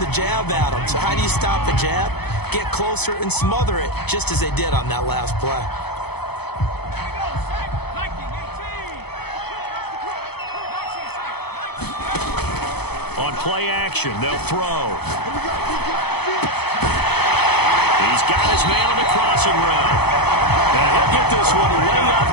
jab at him. So how do you stop the jab? Get closer and smother it, just as they did on that last play. On play action, they'll throw. He's got his man on the crossing route. And he'll get this one way up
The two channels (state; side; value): late; right; 0.98 ms